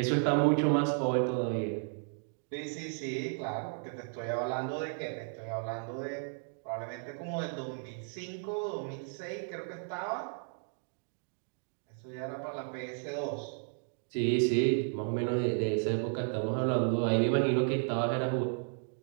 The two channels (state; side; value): silent; left; 55 dB below the other